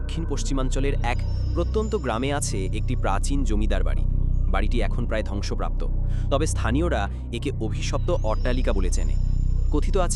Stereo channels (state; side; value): identical; both; correlation 1.00